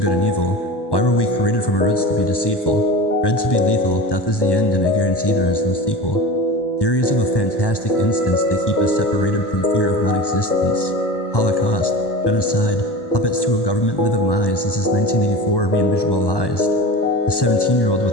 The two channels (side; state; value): right; late; 1.1 ms